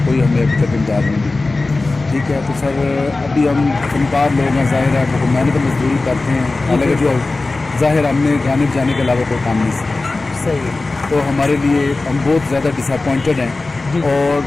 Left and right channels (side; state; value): right; quieter; 3.4 dB